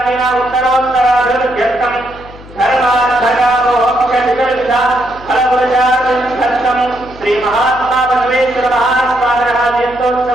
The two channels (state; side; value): noise; left; hum, 19 dB below the sound